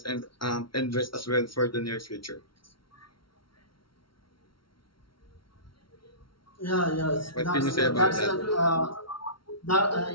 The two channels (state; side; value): late; right; 0.74 ms